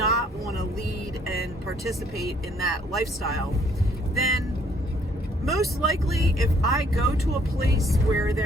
want to lead and participate in that lifestyle, then most likely if I go to a place where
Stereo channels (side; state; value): both; normal; correlation 0.64